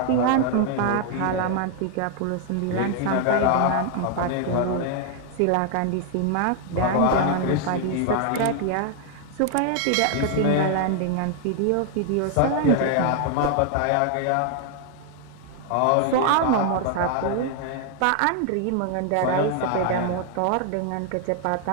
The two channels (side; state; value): both; different; correlation 0.00